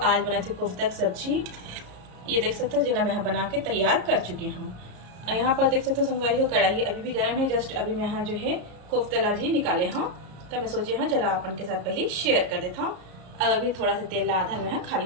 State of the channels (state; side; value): late; left; 33 ms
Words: बना थी कोफ्ता की सब्जी ये देख सकते हो जिन्हें मैं बना के तैयार कर चुकी हूँ। यहाँ पर देख सकते हो संगवारी हो कढ़ाई अभी भी गर्म है जस्ट अभी मैं यहाँ जो है कोफ्ता भी निकाले हूँ। तो मैं सोचे हूँ जरा अपन के साथ पहले शेयर कर देता हूँ। अब अभी थोड़ा सा तेल आधा मैं यहाँ